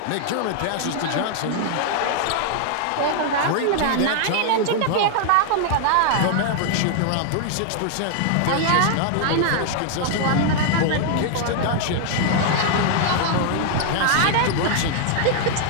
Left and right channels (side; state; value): both; different; correlation 0.00